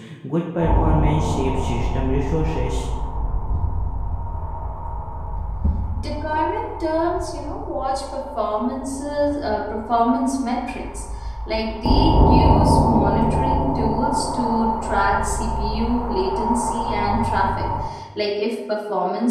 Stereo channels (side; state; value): both; identical; correlation 1.00